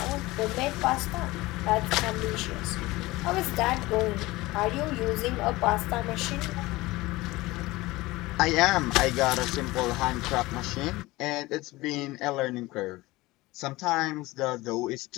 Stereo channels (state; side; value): quieter; right; 20.0 dB